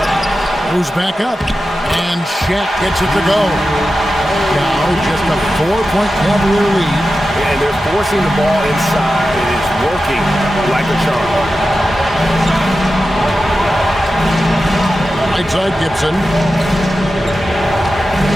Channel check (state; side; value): normal; both; correlation 0.92